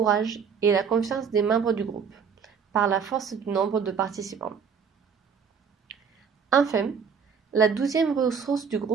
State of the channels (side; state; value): left; quieter; 6.4 dB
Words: et la confiance des membres du groupe, par la force du nombre de participants. Enfin, la douzième ressource du